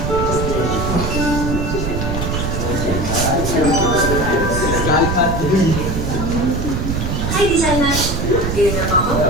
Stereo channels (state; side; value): noise; right; rumble, 2 dB below the sound